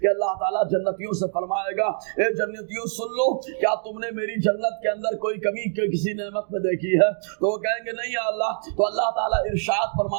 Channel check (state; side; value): silent; left; 62 dB below the other